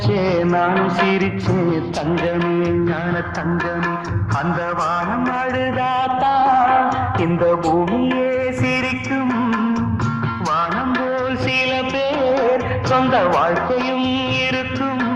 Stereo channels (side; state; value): both; identical; correlation 1.00